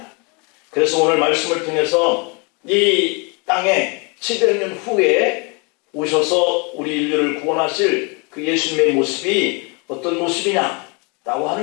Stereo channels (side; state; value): right; quieter; 31.7 dB